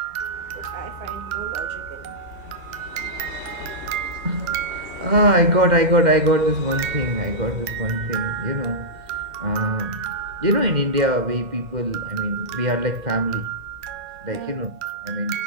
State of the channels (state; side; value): late; left; 2.1 ms